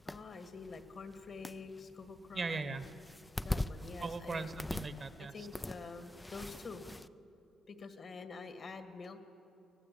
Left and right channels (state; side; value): normal; both; correlation 0.89